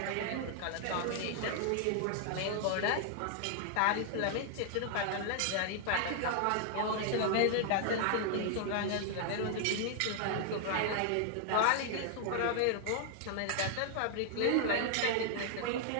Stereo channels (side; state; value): both; different; correlation 0.00